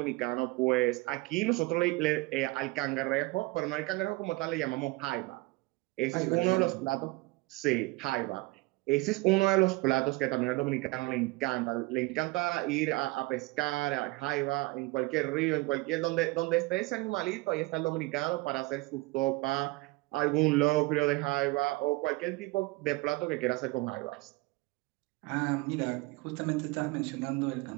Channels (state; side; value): quieter; left; 22.4 dB